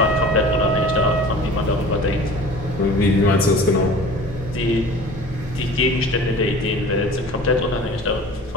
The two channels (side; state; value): both; normal; correlation 0.42